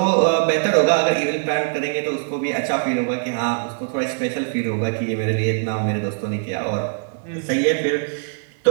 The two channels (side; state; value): left; silent; digital silence